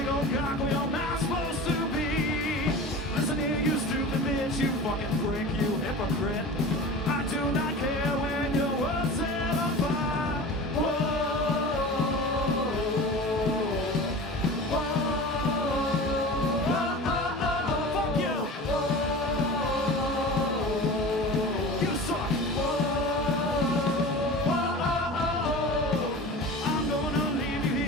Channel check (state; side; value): normal; both; correlation 0.35